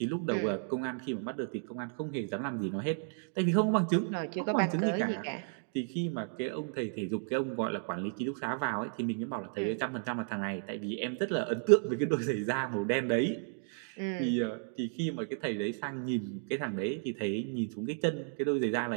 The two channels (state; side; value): silent; left; 56 dB below the other